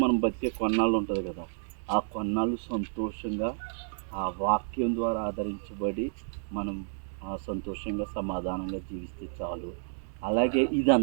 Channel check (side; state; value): left; silent; 58 dB below the other